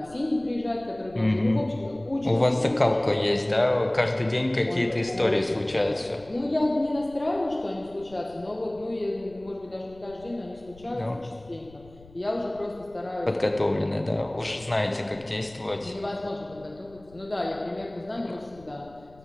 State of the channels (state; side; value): noise; left; rumble, 23 dB below the sound